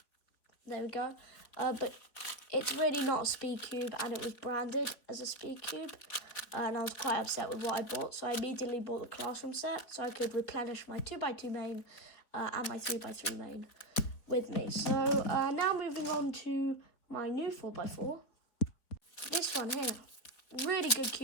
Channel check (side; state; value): right; late; 4.2 ms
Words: There we go. But it's really not a speed cube, and it was branded as a speed cube. And I was quite upset with what I bought, so I immediately bought the Classroom set so I could replenish my 2x2 main and my 3x3 main with me. So now moving on to my new 4x4. This one here, really good